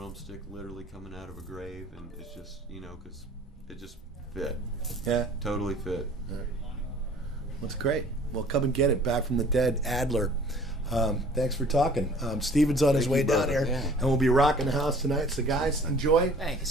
literally coming out of a grave, and it's just, you know, because it just fit, Yeah. totally fit. That's great. Well, come and get it. Back from the Dead, Adler. Thanks for talking. Steven's on his Thank way you, down brother. here, Yeah. and we'll be rocking the house tonight. So, guys, enjoy.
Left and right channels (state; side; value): normal; both; correlation 0.51